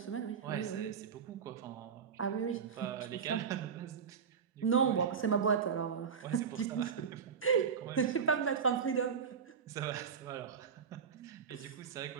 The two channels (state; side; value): quieter; left; 6.7 dB